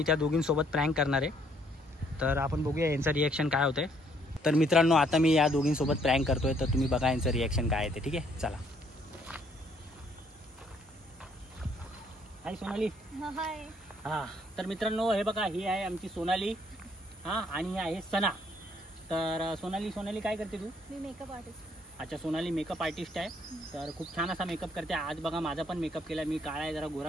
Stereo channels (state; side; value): normal; both; correlation 0.66